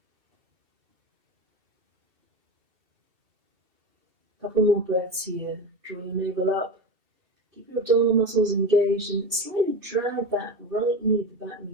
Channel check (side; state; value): left; late; 2.7 ms